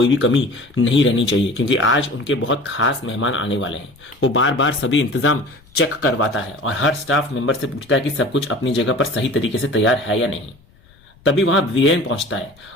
भी कमी नहीं रहनी चाहिए क्योंकि आज उनके बहुत खास मेहमान आने वाले हैं। वो बार बार सभी इंतजाम चेक करवाता है और हर स्टाफ मेंबर से पूछता है कि सब कुछ अपनी जगह पर सही तरीके से तैयार है या नहीं। तभी वहां वीरेन पहुंचता है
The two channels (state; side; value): noise; left; rumble, 29 dB below the sound